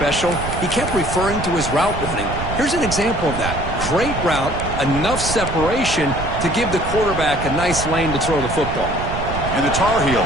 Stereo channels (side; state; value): right; noise; rumble, 6 dB below the sound